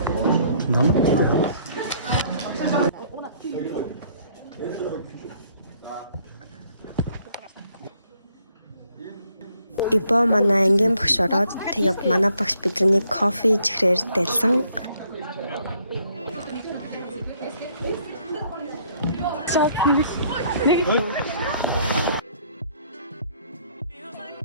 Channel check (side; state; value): both; inverted; correlation -0.65